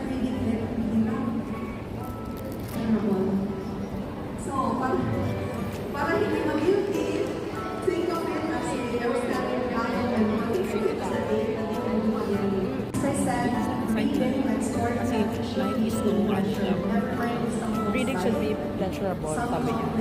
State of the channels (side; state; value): both; identical; correlation 1.00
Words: reading it, you know, terrible. So, para hindi mag-guilty, think of it as a outstanding value and motivation sa day na di ka lumagyan. As I said, reading and storytelling should be pleasure. Never mind if someone Reading should be pleasurable, sabi